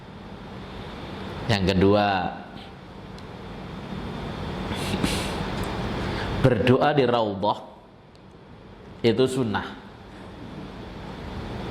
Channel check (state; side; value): identical; both; correlation 1.00